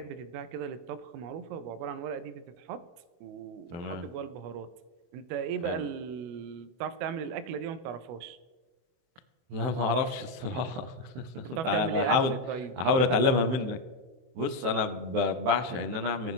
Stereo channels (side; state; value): left; late; 23 ms